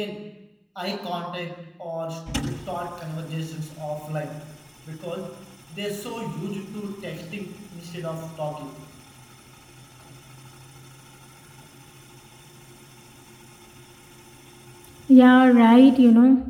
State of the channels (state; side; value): identical; both; correlation 1.00